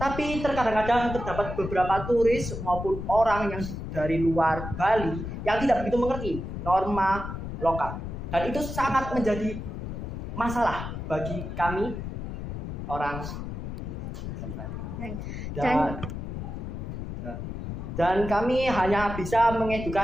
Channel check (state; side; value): noise; left; rumble, 6 dB below the sound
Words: terkadang-kadang terdapat beberapa turis maupun orang yang dari luar Bali yang tidak begitu mengerti norma lokal. Dan itu sangat menjadi masalah bagi kami orang dan kami hanya bisa